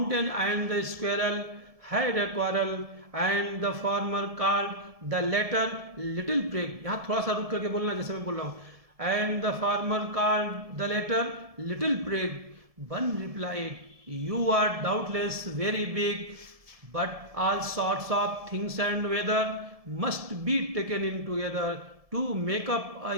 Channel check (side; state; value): left; late; 1.7 ms